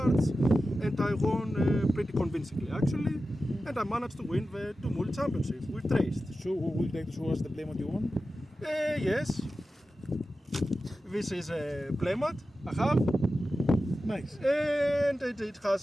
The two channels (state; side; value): normal; both; correlation 0.93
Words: and I won pretty convincingly actually. And I managed to win the Tumult Championship with Treyst. So, would you like to show us the playmat you won? Yes. This is a playmat I have. Nice. And it has